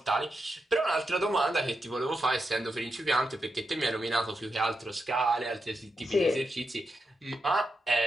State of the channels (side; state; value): both; normal; correlation 0.86